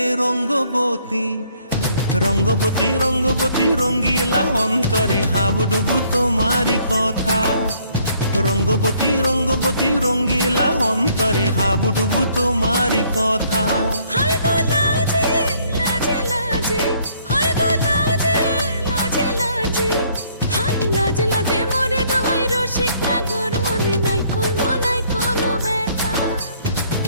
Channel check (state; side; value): inverted; both; correlation -0.64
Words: রঙ্গবতী, রঙ্গবতী রঙ্গবতী রঙ্গিলা অন্তরে হাবুডুবু তোমারি কথা। রঙ্গবতী রঙ্গবতী রঙ্গিলা অন্তরে হাবুডুবু তোমারি কথা। হায় গো লাজে লাজে লাজে, হায় গো লাজে লাজে লাজে, হায় লাজে লাজে মোরে দোহাই রসিক নাগর মনে নাই কোনো ব্যথা।